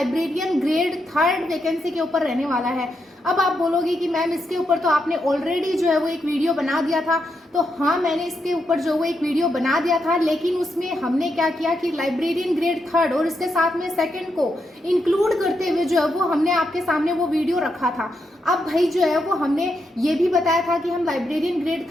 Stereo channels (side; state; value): both; normal; correlation 0.82